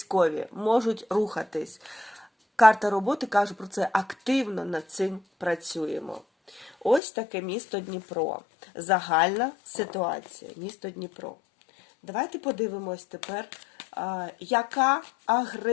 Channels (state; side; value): drops out; right; at 7.0 s